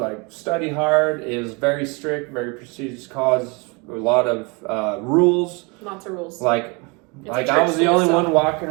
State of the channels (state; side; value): quieter; left; 29.8 dB